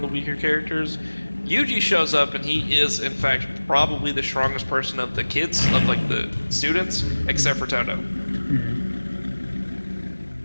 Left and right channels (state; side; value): inverted; both; correlation -1.00